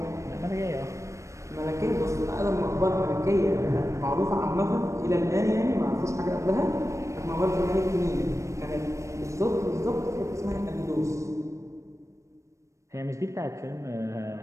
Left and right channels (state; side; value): late; left; 0.15 ms